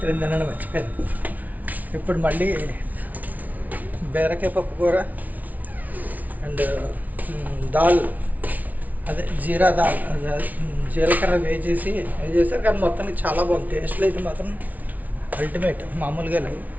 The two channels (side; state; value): left; late; 0.075 ms